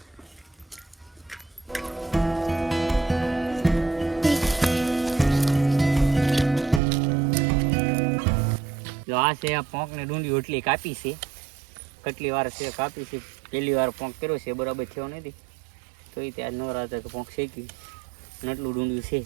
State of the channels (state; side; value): drops out; left; at 6.8 s